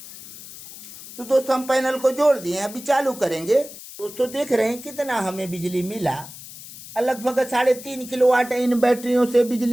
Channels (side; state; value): left; noise; hiss, 15 dB below the sound